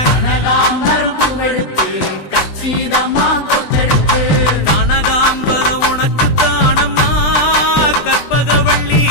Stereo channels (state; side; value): late; right; 20 ms